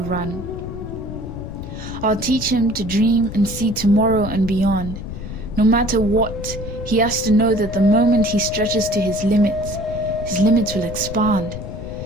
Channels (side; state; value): left; noise; rumble, 9 dB below the sound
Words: run. I'll teach him to dream and see tomorrow and beyond. No matter what, he has to know that the moment he stretches to his limits will expand.